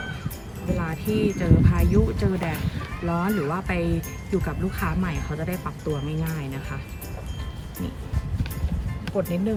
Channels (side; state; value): both; identical; correlation 1.00